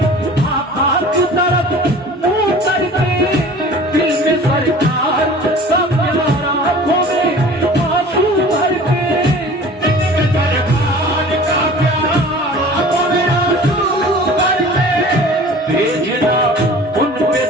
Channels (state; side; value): normal; both; correlation 0.44